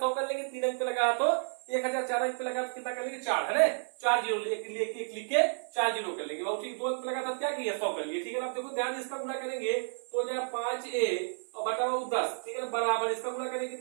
कर लेंगे, 3 अंक पे लगा तो 1000, 4 अंक पे लगा तो कितना कर लेंगे 4 है ना, 4 0 एक लिख के 4 0 कर लेंगे बाबू। ठीक, 2 अंक पे लगा था क्या किया 100 कर लिए। ठीक है ना, आप देखो ध्यान से इसका गुणा करेंगे तो हो जाए 5a और बटा बाबू 10। ठीक है ना, बराबर इसका गुणा करेंगे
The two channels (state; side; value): silent; left; 57 dB below the other